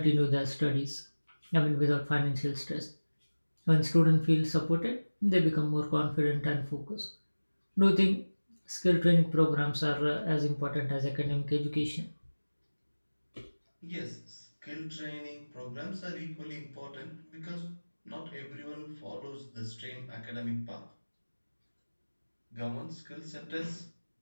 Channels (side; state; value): both; inverted; correlation -1.00